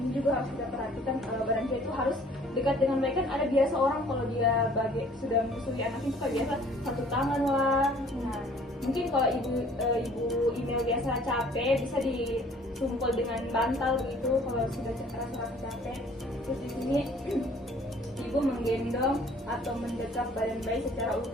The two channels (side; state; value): both; normal; correlation 0.55